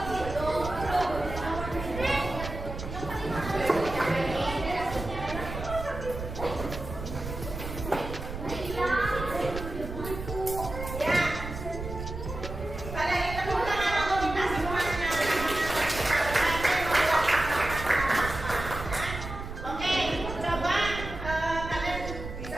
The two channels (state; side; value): noise; right; rumble, 8 dB below the sound